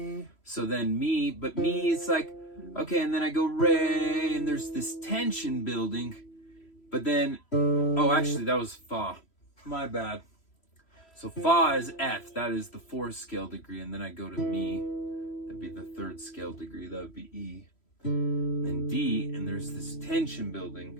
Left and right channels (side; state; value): right; late; 3.1 ms